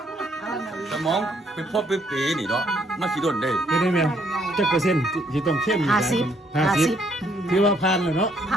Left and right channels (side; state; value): both; normal; correlation 0.69